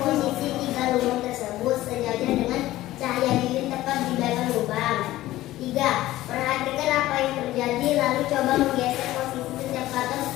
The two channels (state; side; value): quieter; right; 15.8 dB